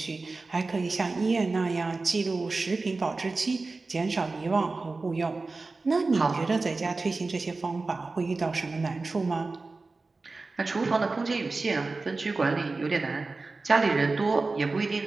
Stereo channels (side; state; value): left; quieter; 3.7 dB